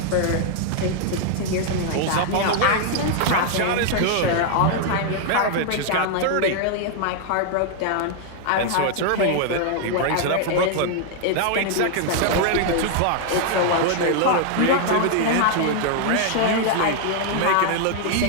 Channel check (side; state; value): both; different; correlation 0.00